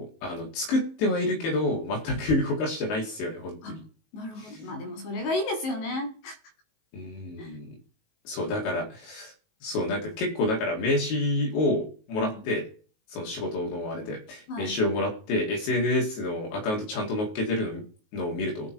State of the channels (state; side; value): late; right; 19 ms